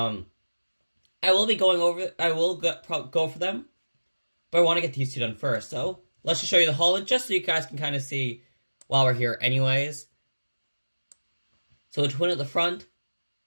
will be going over... I will go for them, but I want to get these 2 done first. So, let's just show you the hull, just so you guys can kind of see while we're here anyways. So, a twin at the front,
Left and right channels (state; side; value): inverted; both; correlation -1.00